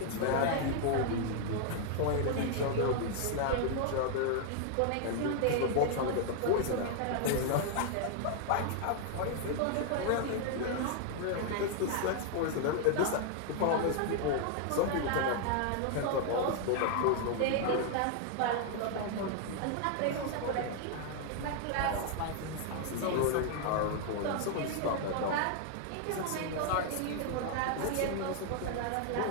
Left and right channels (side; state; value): both; different; correlation 0.00